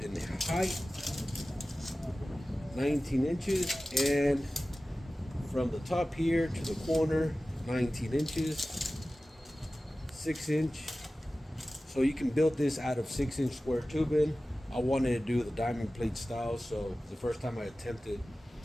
height, 19 inches. And from the top here to the corner, 19 inches, 6 inch. So you can build this out of 6-inch square tubing. I wanted to do the diamond plate style, so the first time I attempted.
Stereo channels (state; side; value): normal; both; correlation 0.96